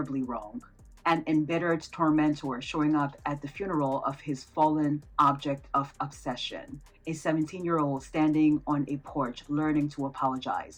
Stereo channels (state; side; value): identical; both; correlation 1.00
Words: wrong. An embittered tormentor showing up at the funeral of his fallen object of obsession. A 17-year-old standing on a porch learning to